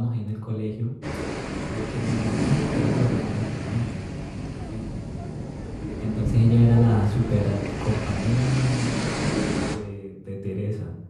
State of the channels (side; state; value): both; identical; correlation 1.00